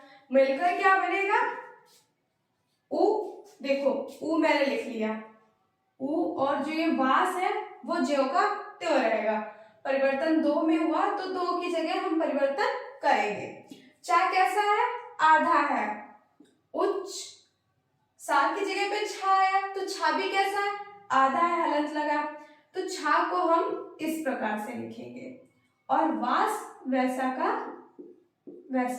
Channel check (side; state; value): both; identical; correlation 1.00